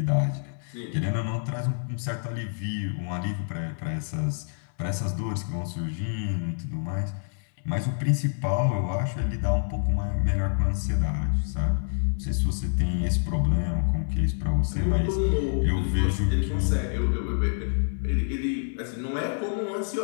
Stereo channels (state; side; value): silent; right; 57 dB below the other